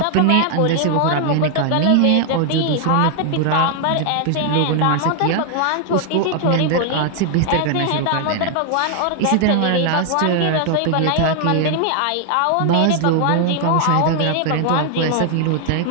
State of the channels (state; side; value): different; both; correlation 0.00